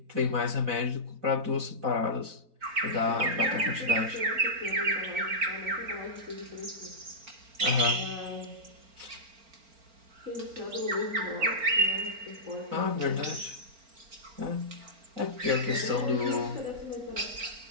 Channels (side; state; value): left; late; 4.4 ms